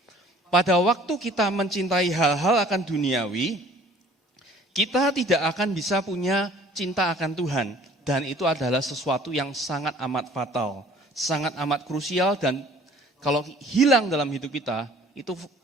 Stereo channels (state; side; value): normal; both; correlation 0.53